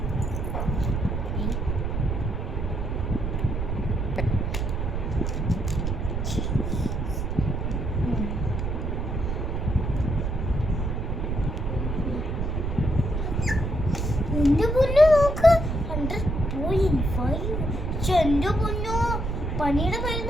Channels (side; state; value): right; noise; rumble, 1 dB below the sound